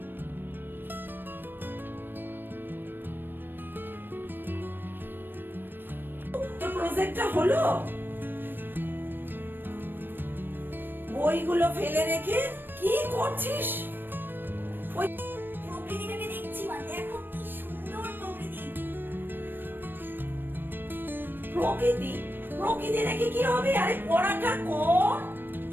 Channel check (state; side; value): late; left; 0.095 ms